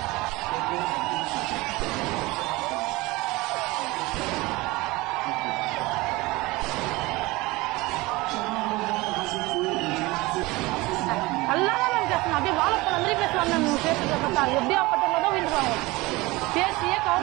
நல்லா தான் மேம் பேசணும். அப்படியே வாழைப்பழம் மாதிரி பேசுவாங்க மேம். இவங்க பேசுறத பார்த்தா எப்படியா பட்டவங்க தான் விழுந்துருவாங்க. பேசியே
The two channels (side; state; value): left; quieter; 21.7 dB